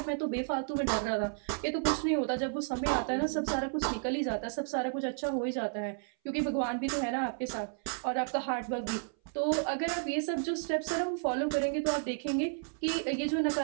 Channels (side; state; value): left; silent; 56 dB below the other